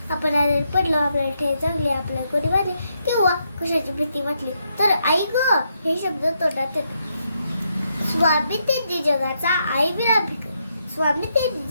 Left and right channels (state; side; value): inverted; both; correlation -0.79